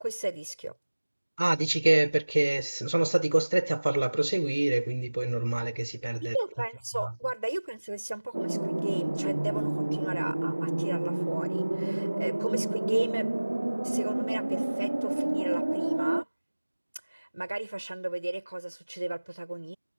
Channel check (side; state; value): both; inverted; correlation -1.00